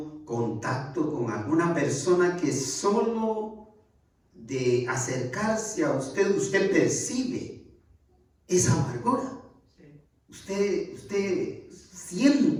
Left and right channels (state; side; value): identical; both; correlation 1.00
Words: contacto con alguna persona que solo de acercarse a usted percibe esa amargura? Usted